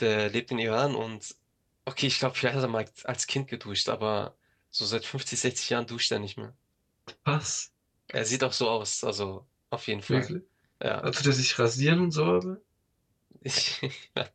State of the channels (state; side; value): identical; both; correlation 1.00